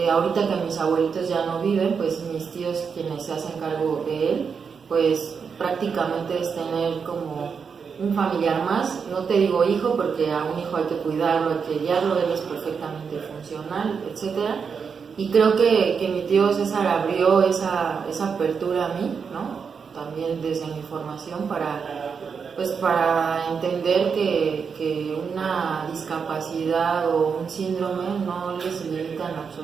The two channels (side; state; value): left; quieter; 6.0 dB